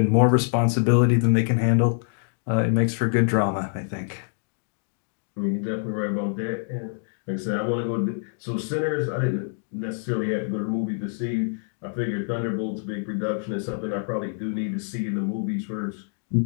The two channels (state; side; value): silent; right; digital silence